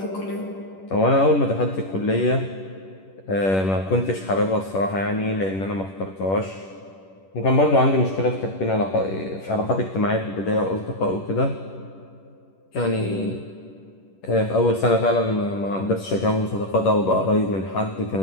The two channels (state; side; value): late; right; 10 ms